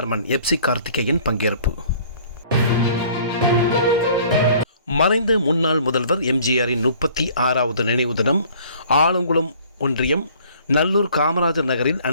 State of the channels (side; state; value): both; inverted; correlation -0.53